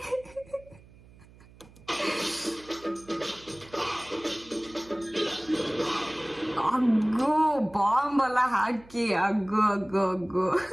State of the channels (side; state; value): right; noise; hum, 24 dB below the sound